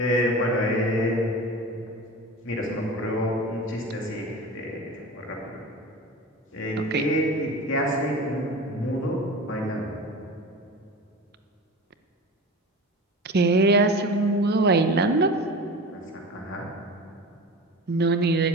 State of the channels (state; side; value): normal; both; correlation 0.33